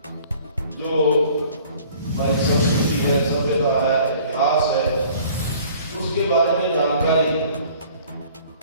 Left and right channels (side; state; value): both; inverted; correlation -0.52